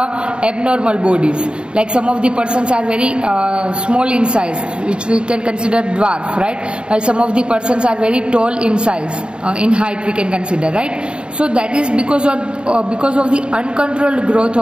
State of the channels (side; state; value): left; late; 0.052 ms